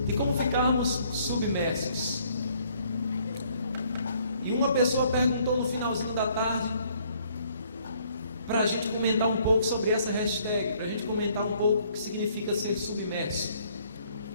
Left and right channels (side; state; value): both; inverted; correlation -0.64